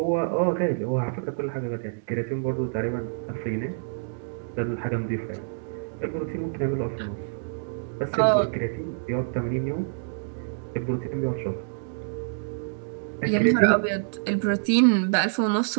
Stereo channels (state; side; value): silent; left; digital silence